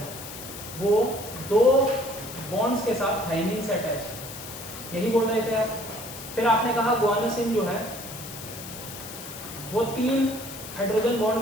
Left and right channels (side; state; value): left; noise; hiss, 11 dB below the sound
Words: वो 2 बॉन्ड्स के साथ थाइमिन से अटैच है, यही बोल रहे थे आप। फिर आपने कहा गुआनोसिन जो है वो 3 हाइड्रोजन बॉन्ड